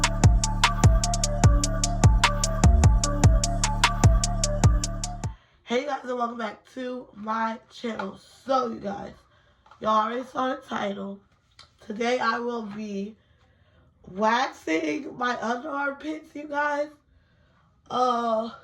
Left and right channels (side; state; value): both; identical; correlation 1.00